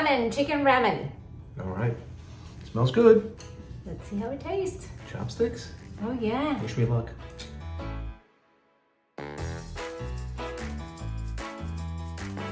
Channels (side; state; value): both; identical; correlation 1.00